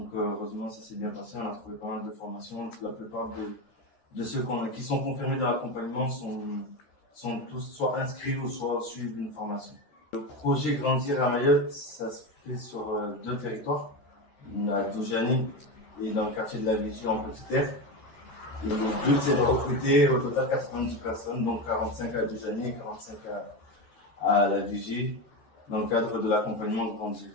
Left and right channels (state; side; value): late; right; 13 ms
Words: heureusement ça s'est bien passé, on a trouvé pas mal de formations. La plupart de ceux qui sont confirmés dans l'accompagnement sont tous soit inscrits ou soit suivent une formation. Le projet Grandir à Mayotte, ça se fait sur 2 territoires, à Doujani et dans le quartier de la Vigie en Petite Terre. Et le but c'est de recruter au total 90 personnes, donc 45 à Doujani et 45 à la Vigie, dans le cadre de l'accompagnement Grandir.